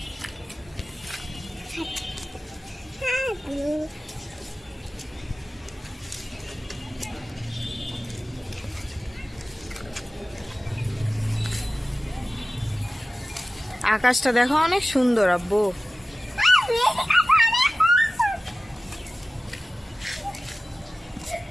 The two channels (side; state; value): both; normal; correlation 0.96